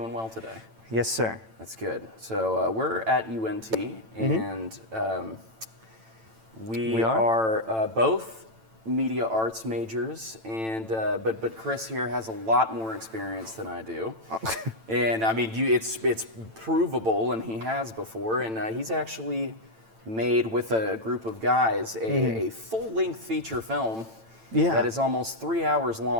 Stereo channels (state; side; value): late; left; 9.0 ms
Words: well today? Yes, sir. That's good. So we're at UNT, and we are both media arts majors, and but Chris here has a lot more experience than I do, and I mean it's provable, and he has before, and he's actually made with a group of guys a full-length feature film that is almost 3 hours